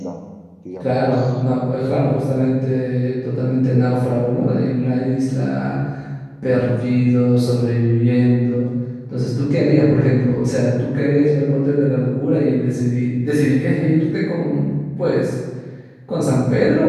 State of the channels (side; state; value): both; identical; correlation 1.00